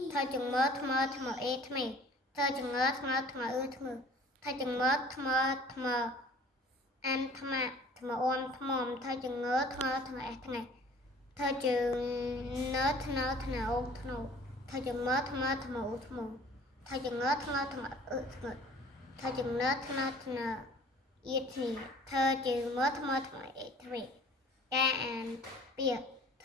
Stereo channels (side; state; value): both; normal; correlation 0.50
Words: ធ្វើចងើថ្មើថ្មើអេថ្មែធ្វើចងើថ្មើថ្មើថ្មើធ្វើចងើថ្មើថ្មើអានថ្មថ្មអមថ្មធ្វើចងើថ្មើថ្មើអេថ្ងៃធ្វើចងើធ្នើធ្នើអូធ្នូធ្វើចងើថ្មើថ្មើឧធ្នូធ្វើចងើថ្មើថ្មើធ្ងើធ្វើចងើធ្នើធ្នើអៀធីធ្វើចងើថ្មើថ្មើអេថ្មីការអានពាក្យធ